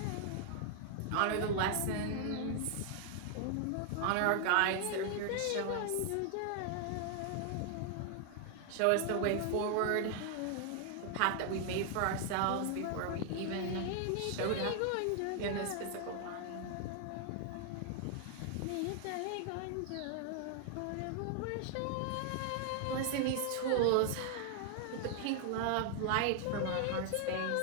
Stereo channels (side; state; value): both; different; correlation 0.00